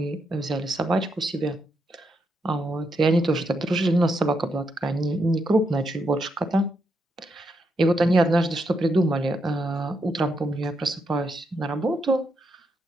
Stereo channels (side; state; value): both; normal; correlation 0.81